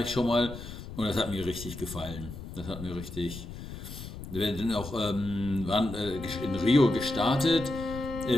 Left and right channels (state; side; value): noise; left; rumble, 11 dB below the sound